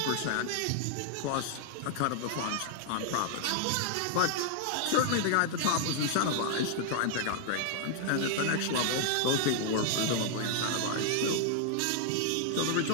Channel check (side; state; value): both; different; correlation 0.00